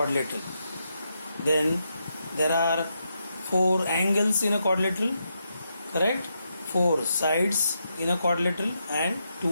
then there are four angles in a quadrilateral, correct? Four sides in a quadrilateral and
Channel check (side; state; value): both; inverted; correlation -0.82